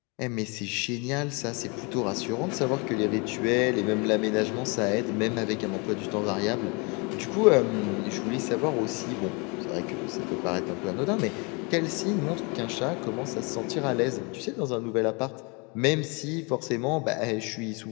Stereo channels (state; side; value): quieter; right; 30.6 dB